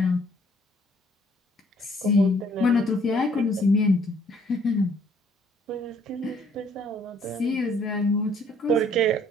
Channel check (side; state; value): both; normal; correlation 0.62